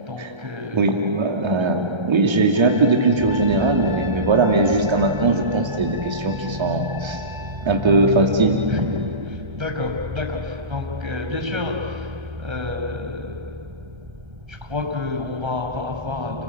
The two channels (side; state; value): left; late; 1.3 ms